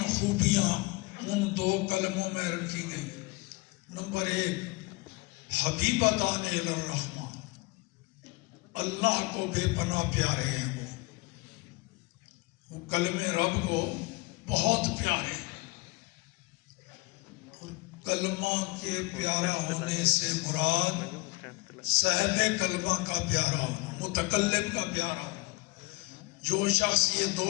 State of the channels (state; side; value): quieter; right; 24.6 dB